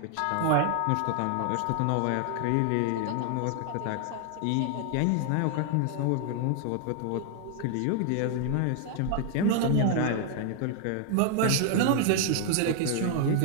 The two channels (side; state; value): both; different; correlation 0.00